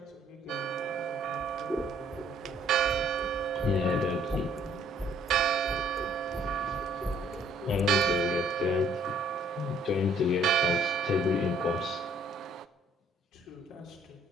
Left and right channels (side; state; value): both; normal; correlation 0.62